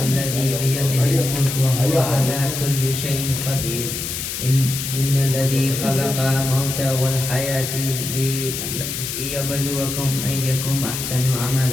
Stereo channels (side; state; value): left; noise; hiss, 5 dB below the sound